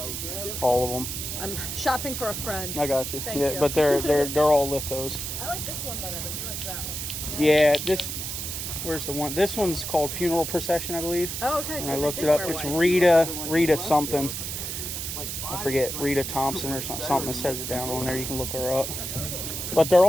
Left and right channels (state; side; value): noise; right; hiss, 5 dB below the sound